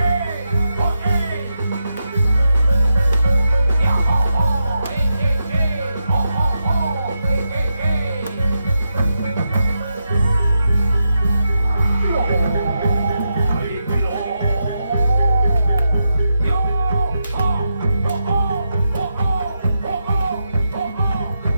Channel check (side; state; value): both; inverted; correlation -0.85